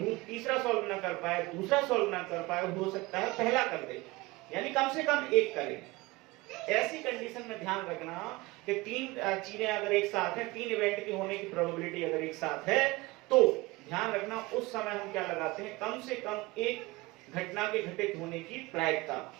तीसरा सॉल्व ना कर पाए, दूसरा सॉल्व ना कर पाए, हो सकता है पहला कर दे, यानी कम से कम एक करे। ऐसी कंडीशन में ध्यान रखना कि तीन चीजें अगर एक साथ है, तीन इवेंट की होने की प्रोबेबिलिटी अगर एक साथ है, तो ध्यान रखना उस समय हम क्या लगाते हैं, कम से कम एक घटना के घटित होने की प्रायिकता,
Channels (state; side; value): quieter; left; 22.0 dB